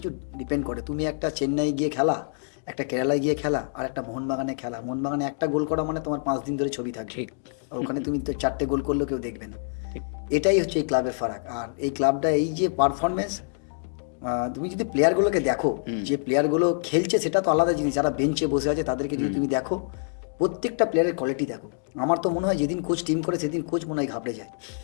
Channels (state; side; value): silent; right; digital silence